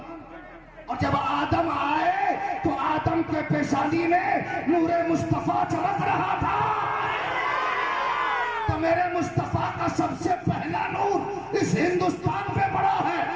और जब आदम आए तो आदम के पेशानी में नूरे मुस्तफा चमक रहा था। तो मेरे मुस्तफा का सबसे पहला नूर इस हिंदुस्तान पे पड़ा है।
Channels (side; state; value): both; identical; correlation 1.00